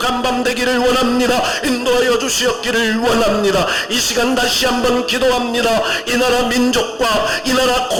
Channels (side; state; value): both; identical; correlation 1.00